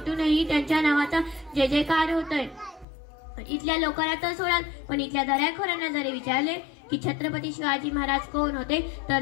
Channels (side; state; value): right; drops out; at 2.9 s